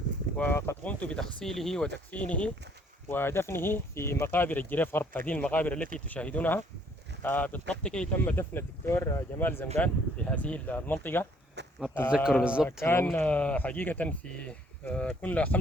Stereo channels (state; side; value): normal; both; correlation 0.63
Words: وقد قمت بتغسيله وتكفينه ودفنه في مقابر الجريف غرب، هذه المقابر التي تشاهدونها. بالضبط كي تم دفن الدكتور جمال زنقان في هذه المنطقة. ما بتتذكر بالضبط كان والله. حقيقة في كنا